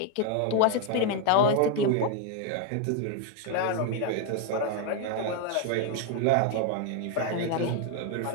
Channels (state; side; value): different; both; correlation 0.01